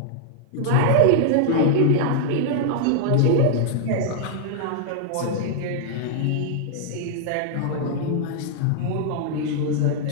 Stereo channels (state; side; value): different; both; correlation -0.01